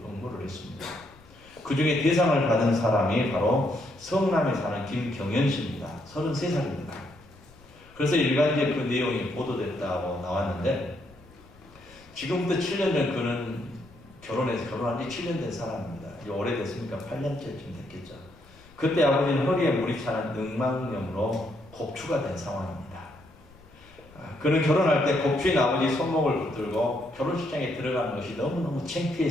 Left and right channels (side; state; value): left; noise; rumble, 25 dB below the sound